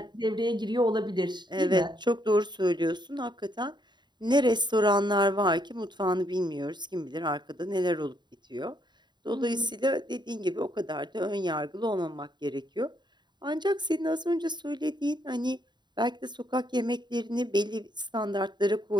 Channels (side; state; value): left; late; 0.21 ms